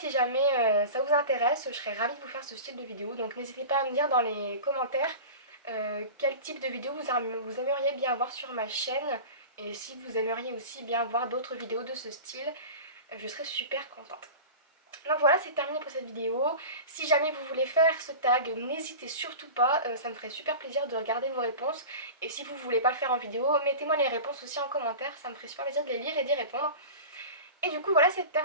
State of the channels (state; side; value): inverted; both; correlation -0.33